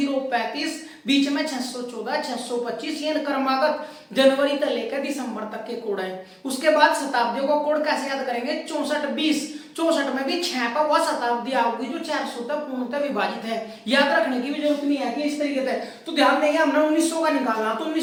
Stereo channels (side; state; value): both; identical; correlation 1.00